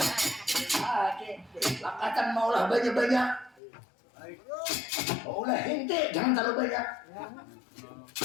Lakatan maulah banyak-banyak. Maulah henti, jangan terlalu banyak.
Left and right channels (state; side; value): drops out; right; at 3.6 s